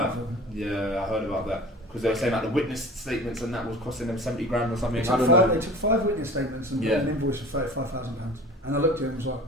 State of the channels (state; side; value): normal; both; correlation 0.41